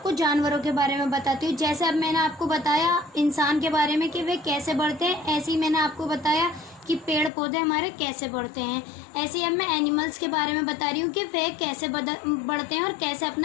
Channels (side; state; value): right; drops out; at 7.3 s